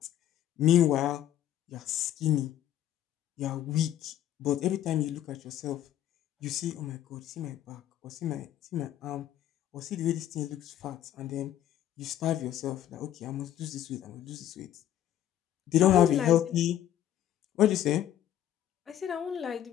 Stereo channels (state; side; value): quieter; right; 11.5 dB